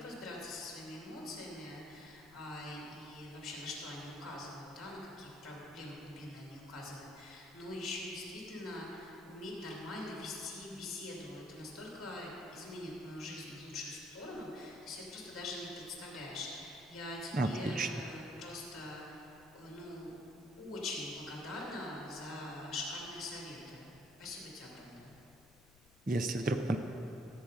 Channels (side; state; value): left; noise; rumble, 23 dB below the sound